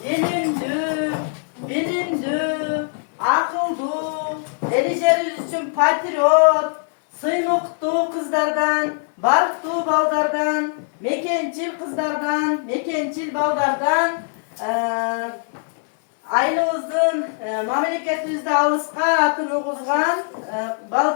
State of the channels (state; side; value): silent; right; 62 dB below the other